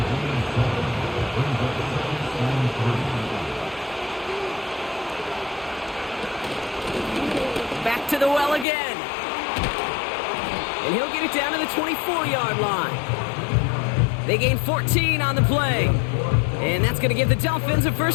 Back to the well again. And he'll get it down to the 24-yard line. They gain 14 on the play. And that's going to give the Dolphins a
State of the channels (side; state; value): right; drops out; at 8.7 s